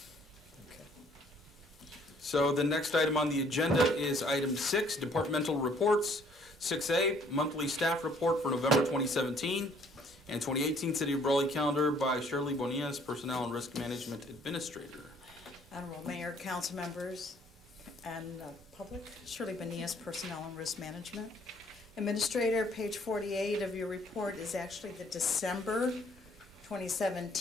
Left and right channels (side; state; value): both; normal; correlation 0.61